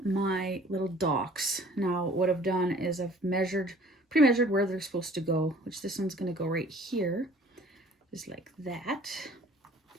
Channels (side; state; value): both; normal; correlation 0.52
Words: my little docks. Now, what I've done is I've pre-measured where they're supposed to go, which this one's going to go right here, just like that.